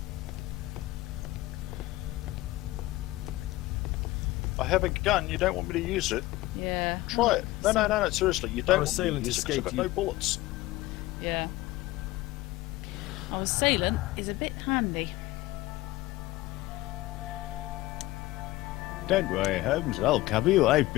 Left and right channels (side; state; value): right; quieter; 18.3 dB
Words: I have a gun. You don't want me to use it? Yeah. Try it. No, seriously. You don't Our want me to assailant use it 'cause I've escaped got no you. bullets. Yeah. Our assailant is a bit handy. Don't worry, Holmes. I'll cover you. I've